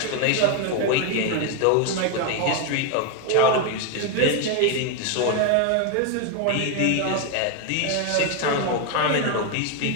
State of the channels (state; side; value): different; both; correlation 0.01